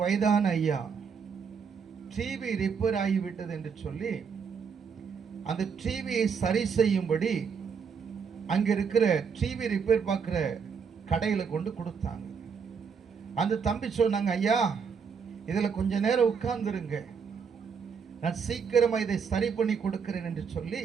வயதான ஐயா டிவி ரிப்பேர் ஆகிவிட்டது என்று சொல்லி அந்த டிவியை சரி செய்யும்படி அங்க இருக்கிற டிவி ரிப்பேர் பார்க்கிற கடையில கொண்டு கொடுத்தாங்க. அந்த தம்பி சொன்னாங்க, ஐயா இதுல கொஞ்ச நேரம் உட்கார்ந்துருங்க, நான் சீக்கிரமா இதை சரி பண்ணி கொடுக்கிறேன் என்று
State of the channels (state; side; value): quieter; left; 6.2 dB